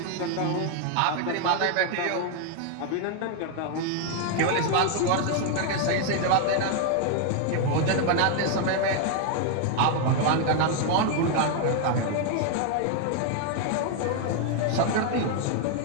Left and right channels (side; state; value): both; different; correlation 0.00